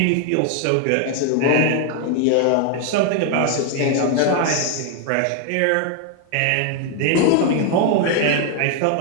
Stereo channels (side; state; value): both; different; correlation 0.00